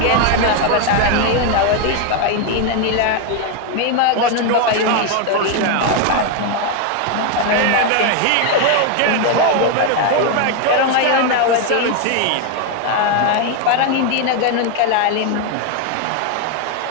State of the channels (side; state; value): both; different; correlation 0.01